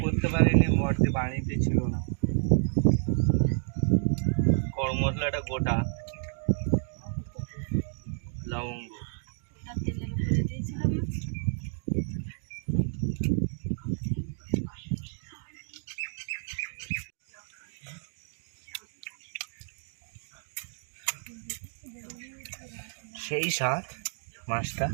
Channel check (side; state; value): left; silent; digital silence